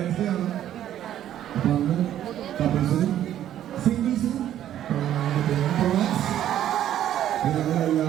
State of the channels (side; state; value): left; quieter; 11.5 dB